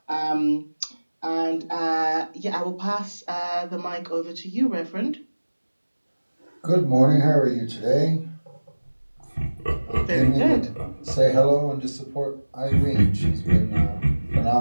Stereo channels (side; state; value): both; inverted; correlation -1.00